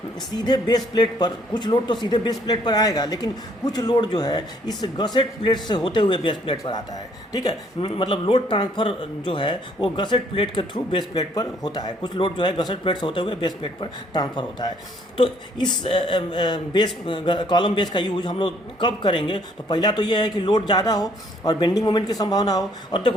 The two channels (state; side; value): normal; both; correlation 0.64